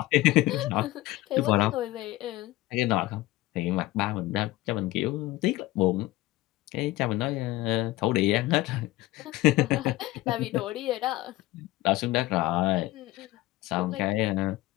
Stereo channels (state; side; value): quieter; right; 18.0 dB